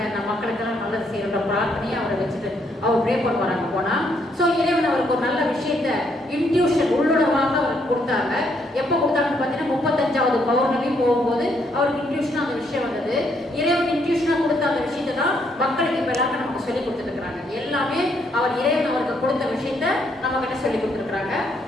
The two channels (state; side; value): normal; both; correlation 0.72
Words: நம்ம மக்களுக்கெல்லாம் நல்லது செய்யற பிரார்த்தனையை அவரை வச்சுட்டு அவர் ப்ரே பண்ணுவாங்க போனா. ஸோ இறைவன் அவருக்கு ஒரு நல்ல விஷயத்த இன்ட்யூஷன் உள்ளுணர்வாக அவருக்கு கொடுத்தாங்க. எப்போ கொடுத்தாங்கன்னு பார்த்தீங்கன்னா 35வது பௌர்ணமி போகும்போது அவருக்கு இன்ட்யூஷனாக அந்த விஷயம் வந்தது. இறைவன் இன்ட்யூஷனாக கொடுத்த அந்த விஷயத்தை தான் மக்களுக்கு இப்போ எல்லாருக்கும் நமக்கு சொல்லி கொடுத்துருக்குறாங்க. எல்லாமே அவர் இறைவன் அவருக்கு கொடுத்த விஷயத்த நம்ம கிட்ட சொல்லி கொடுத்துருக்குறாங்க.